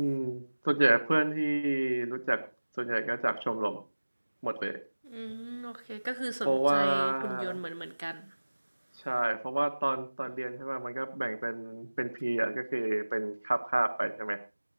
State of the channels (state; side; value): inverted; both; correlation -1.00